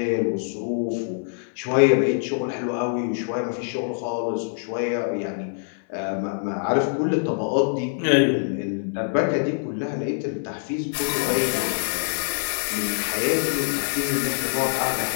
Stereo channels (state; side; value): silent; right; 62 dB below the other